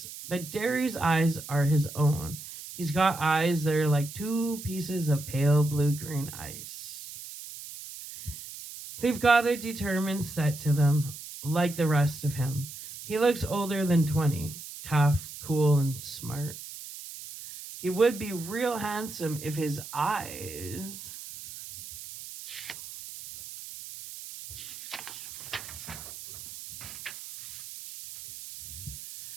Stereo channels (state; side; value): noise; right; hiss, 12 dB below the sound